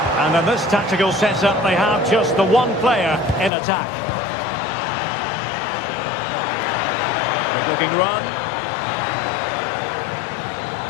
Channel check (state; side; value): drops out; right; at 3.5 s